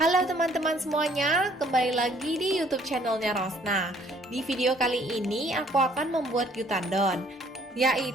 Halo teman-teman semuanya, kembali lagi di YouTube channelnya Rosna. Di video kali ini aku akan membuat gyutadon,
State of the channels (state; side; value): normal; both; correlation 0.61